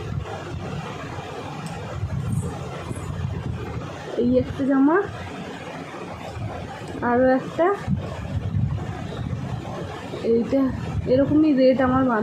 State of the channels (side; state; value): both; identical; correlation 1.00